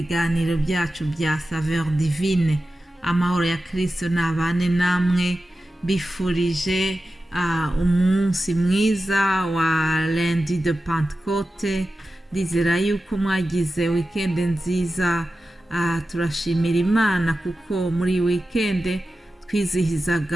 byacu bya Saveur Divine. Amahoro ya Kristo nabane namwe, bifurije umunsi mwiza wa lundi de Pentecôte. Ndizera yuko mwagize weekend nziza. Turashimira Imana kuko muri weekend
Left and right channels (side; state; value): both; normal; correlation 0.93